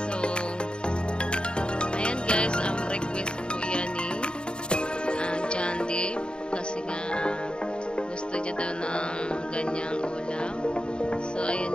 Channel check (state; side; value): late; right; 0.051 ms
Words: ayan guys. Request po yan ni John Dave. Kasi nga, gusto niya daw ng ganyang ulam. So,